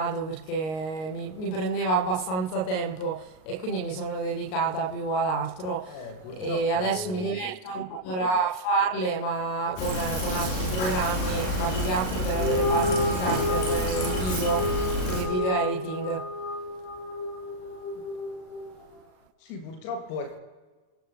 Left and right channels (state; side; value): late; right; 38 ms